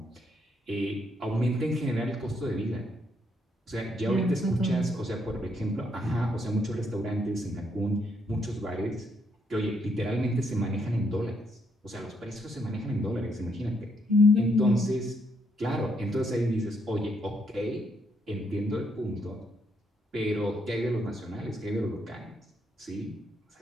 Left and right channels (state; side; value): normal; both; correlation 0.74